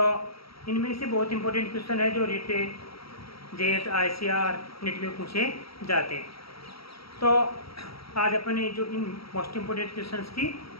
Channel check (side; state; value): right; late; 0.75 ms